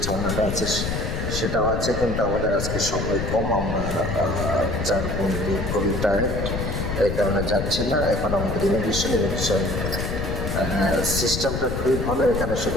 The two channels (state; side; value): noise; left; rumble, 3 dB below the sound